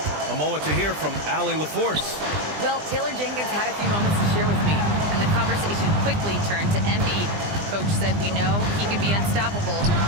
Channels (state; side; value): late; left; 20 ms